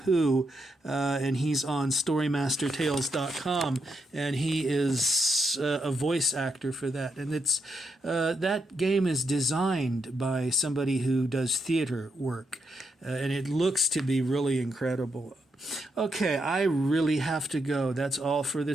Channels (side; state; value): both; normal; correlation 0.80